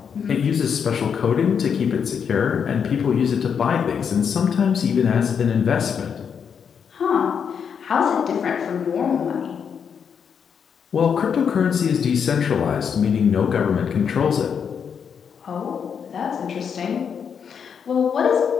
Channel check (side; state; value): right; quieter; 7.1 dB